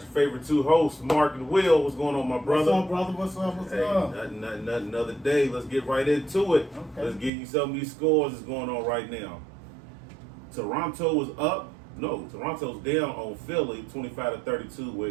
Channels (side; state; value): left; drops out; at 7.3 s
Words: favorite two hosts, Mark and Will. What's going on, my brother? What's up, brother? What's up? What's up? Nothing. Another day. Let's get right into it. Okay. Let's give you some of these scores that's going on right now. Toronto was up. No, Toronto's down on Philly, 25-32,